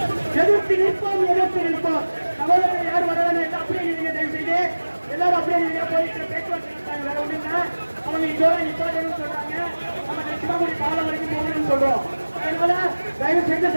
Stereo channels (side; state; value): both; inverted; correlation -1.00